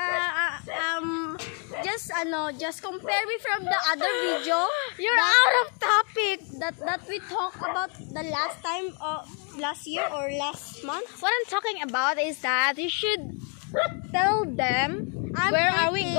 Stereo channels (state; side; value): quieter; right; 39.6 dB